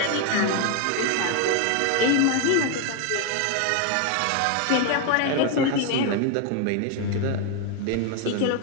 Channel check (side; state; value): both; different; correlation 0.01